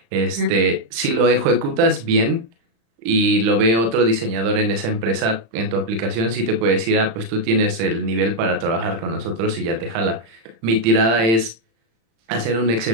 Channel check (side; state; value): left; late; 35 ms